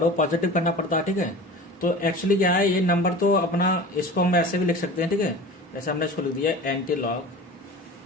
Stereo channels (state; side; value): normal; both; correlation 0.37